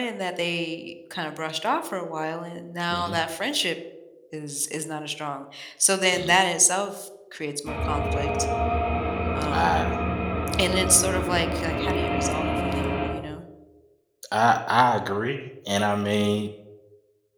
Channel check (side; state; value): both; identical; correlation 1.00